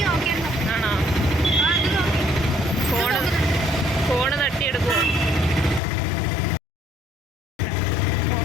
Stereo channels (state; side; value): drops out; right; at 5.8 s